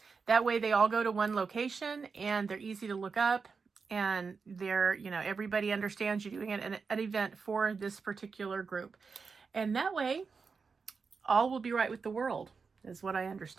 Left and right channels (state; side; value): quieter; left; 5.1 dB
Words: That way they all go to one location and they're easy to look up, and they're, you know, everybody understands you're doing an event for this particular group. And that way all will be right with the world, is what I